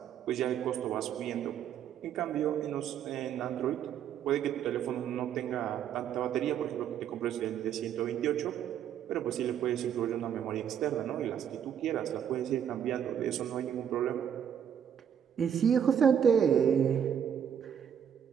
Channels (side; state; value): left; quieter; 8.8 dB